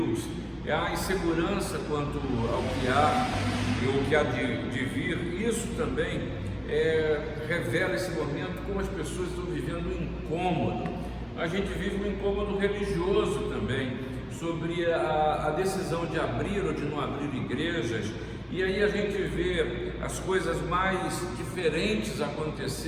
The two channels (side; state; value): both; identical; correlation 1.00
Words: é a insegurança quanto ao que há e o que há de vir. Isso também revela esse momento, como as pessoas estão vivendo um incômodo. A gente vive um incômodo religioso também, sobre a decisão de abrir ou de não abrir igrejas. E aí a gente vê as coisas mais diferentes